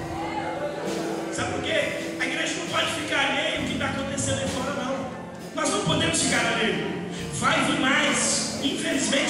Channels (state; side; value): identical; both; correlation 1.00